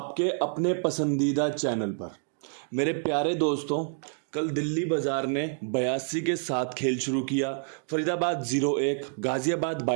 अपने पसंदीदा चैनल पर। मेरे प्यारे दोस्तों, कल दिल्ली बाजार ने 82 के साथ खेल शुरू किया। फरीदाबाद 0-1, गाजियाबाद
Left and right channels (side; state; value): left; silent; 59 dB below the other